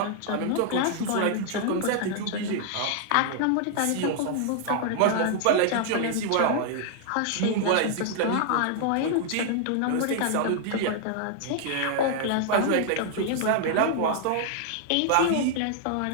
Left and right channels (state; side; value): different; both; correlation 0.00